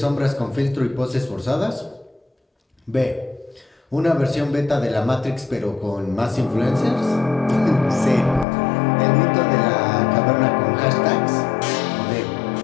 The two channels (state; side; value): drops out; right; at 8.5 s